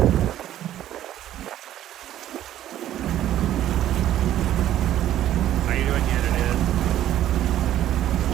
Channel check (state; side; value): quieter; left; 12.3 dB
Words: How you doing, yet it is?